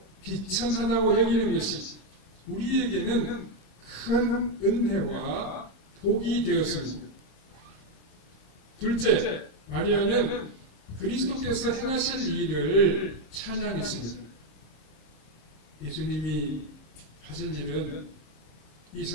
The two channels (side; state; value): right; late; 26 ms